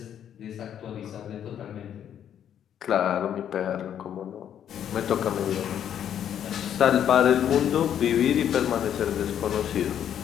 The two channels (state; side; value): quieter; right; 9.6 dB